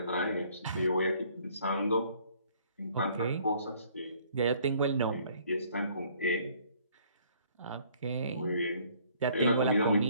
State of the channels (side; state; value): both; inverted; correlation -0.61